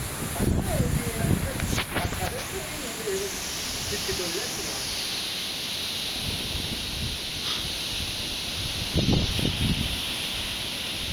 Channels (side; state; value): both; identical; correlation 1.00